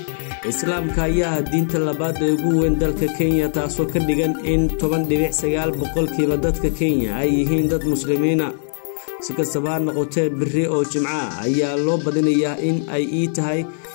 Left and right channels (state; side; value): silent; right; 65 dB below the other